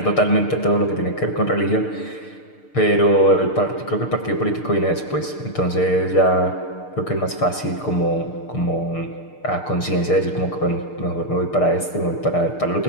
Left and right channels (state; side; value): late; right; 6.6 ms